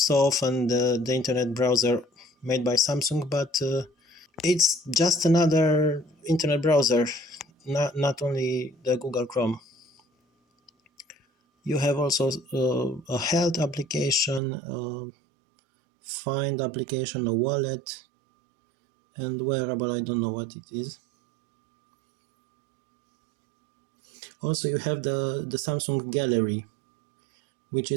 often the internet browser made by Samsung, but it's just another internet browser, not only the Google Chrome. You have also a health application, find application, a wallet, and wearable. I don't know what it is. Also, you have the Samsung Gallery, which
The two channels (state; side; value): drops out; left; at 14.4 s